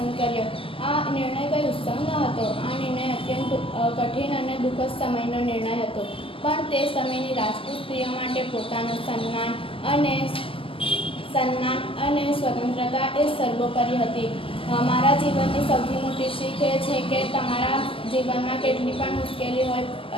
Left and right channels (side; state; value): right; late; 0.26 ms